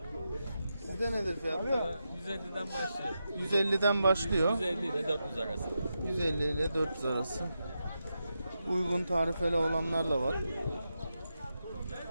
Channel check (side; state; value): both; inverted; correlation -0.88